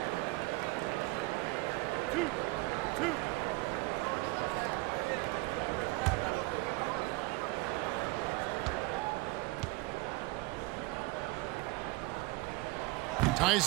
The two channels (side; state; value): left; quieter; 22.7 dB